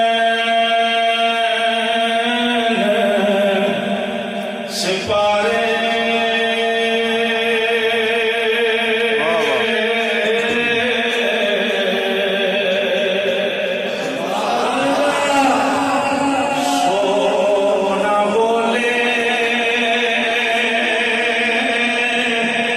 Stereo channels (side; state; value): both; identical; correlation 1.00